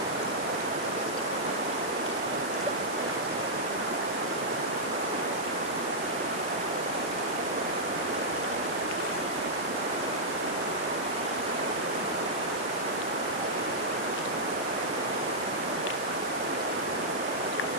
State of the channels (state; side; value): noise; right; hiss, 12 dB below the sound